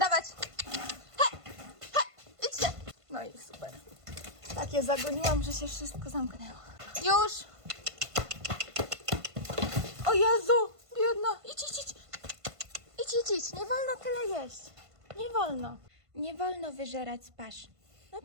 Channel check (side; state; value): left; late; 1.5 ms